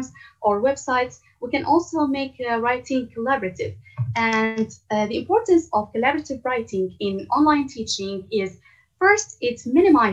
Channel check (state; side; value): identical; both; correlation 1.00